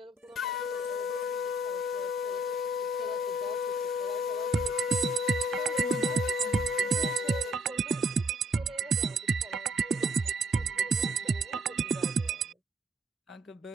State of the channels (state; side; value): normal; both; correlation 0.64